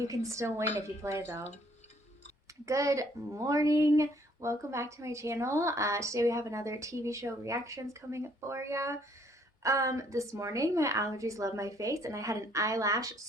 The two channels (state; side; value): normal; both; correlation 0.64